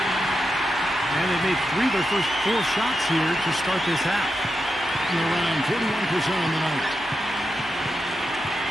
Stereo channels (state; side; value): normal; both; correlation 0.87